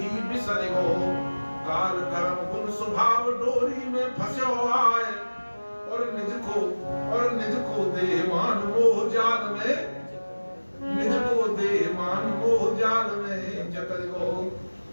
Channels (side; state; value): both; inverted; correlation -1.00